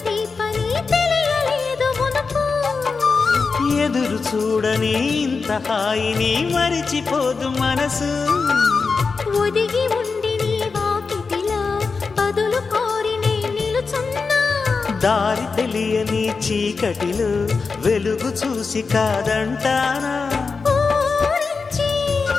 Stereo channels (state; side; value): quieter; right; 4.7 dB